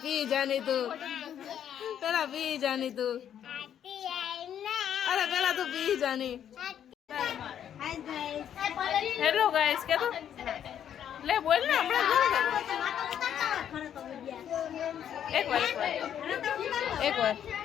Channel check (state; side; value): quieter; right; 9.6 dB